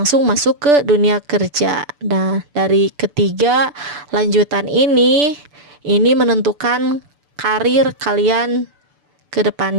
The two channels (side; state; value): left; late; 6.9 ms